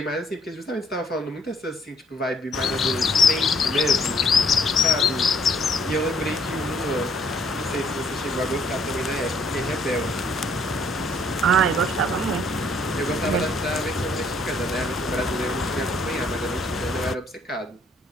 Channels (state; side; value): normal; both; correlation 0.64